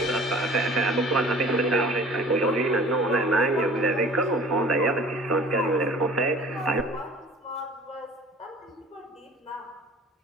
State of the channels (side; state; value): both; normal; correlation 0.46